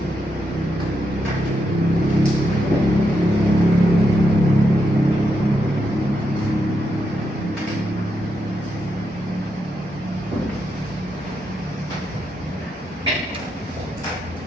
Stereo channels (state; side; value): normal; both; correlation 0.82